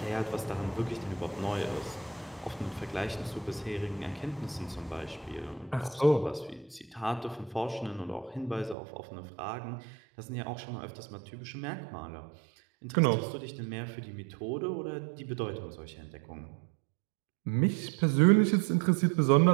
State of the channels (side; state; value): left; drops out; at 8.8 s